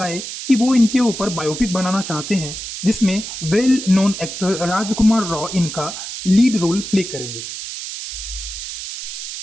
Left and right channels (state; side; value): noise; right; hiss, 8 dB below the sound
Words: कि वो इनके ऊपर बायोपिक बनाना चाहते हैं, जिसमें वेल नोन एक्टर राजकुमार राव इनका लीड रोल प्ले करेंगे।